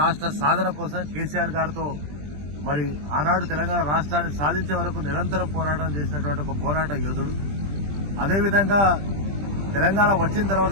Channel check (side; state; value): left; late; 20 ms